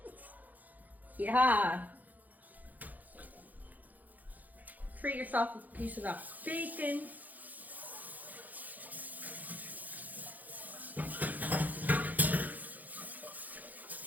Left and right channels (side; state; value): left; late; 0.081 ms